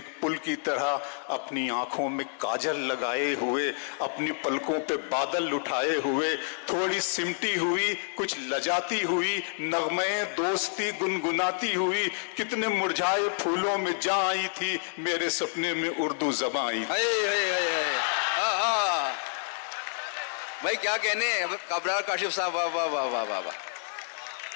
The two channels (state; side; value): silent; right; 58 dB below the other